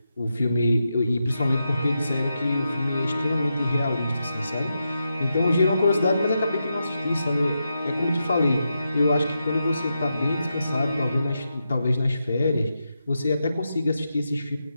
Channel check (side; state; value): both; inverted; correlation -0.86